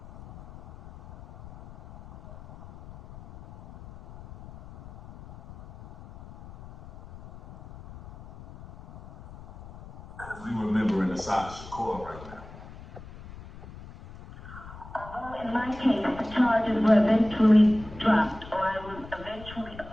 Because we remembering Assata Shakur right now. Although in my case the charges were eventually dropped or I was eventually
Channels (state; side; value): noise; left; rumble, 17 dB below the sound